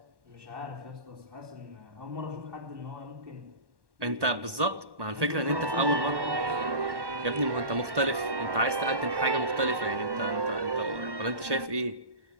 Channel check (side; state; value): left; late; 1.1 ms